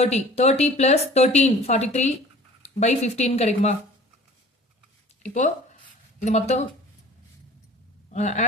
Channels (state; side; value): normal; both; correlation 0.46